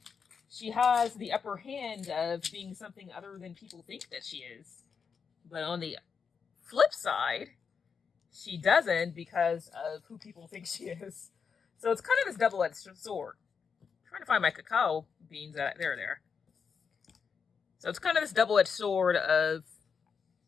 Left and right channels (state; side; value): quieter; right; 6.1 dB